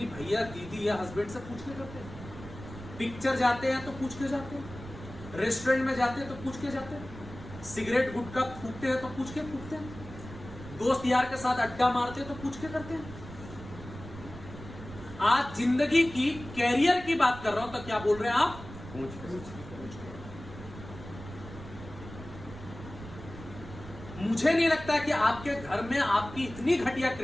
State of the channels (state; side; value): noise; right; rumble, 14 dB below the sound